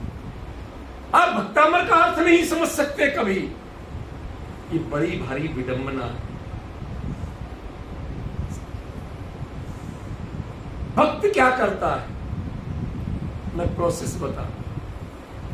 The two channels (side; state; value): both; identical; correlation 1.00